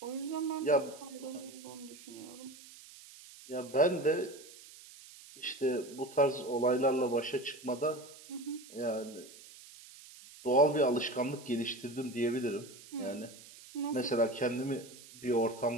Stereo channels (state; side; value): noise; right; hiss, 19 dB below the sound